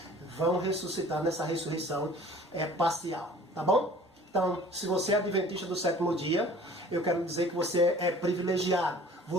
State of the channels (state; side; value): normal; both; correlation 0.48